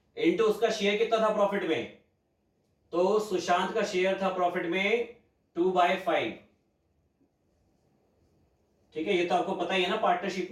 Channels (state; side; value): identical; both; correlation 1.00